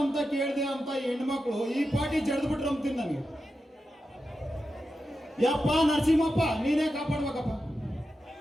ಅಂತ ಕೇಳಿದೆ ಅಂತ ಹೆಣ್ಮಕ್ಳು ಈ ಪಾಟಿ ಜಡ್ದು ಬಿಟ್ರು ಅಂತೀನಿ ನನಗೆ. ಯಪ್ಪ ನರಸಿಂಹಪ್ಪ ನೀನೇ ಕಾಪಾಡ್ಬೇಕಪ್ಪ.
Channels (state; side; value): normal; both; correlation 0.90